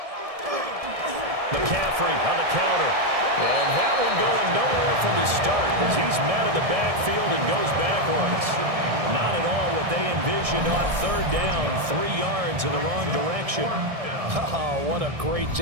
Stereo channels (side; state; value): left; late; 1.7 ms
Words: McCaffrey on the counter. And that one going nowhere from the start as he's met in the backfield and goes backwards. Not at all what they envisioned on 3rd down. 3 yards in the wrong direction. Oh, what a great